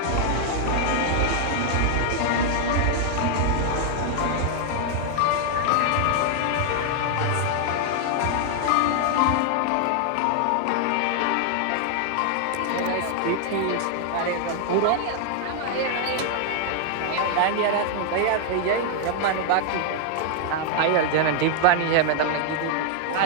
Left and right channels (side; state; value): both; different; correlation 0.00